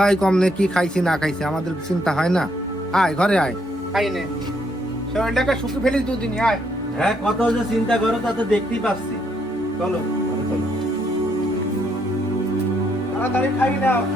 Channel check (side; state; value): both; normal; correlation 0.73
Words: কম নে কি খাইছি না খাইছি আমাদের চিন্তা হয় না? আয় ঘরে আয়, খাই নে, শরীরটাকে শুকিয়ে ফেলিস দুদিন। আয়। হ্যাঁ, কত যে চিন্তা করো তা তো দেখতেই পাচ্ছি। চলো চলো। তাড়াতাড়ি খাই নাও।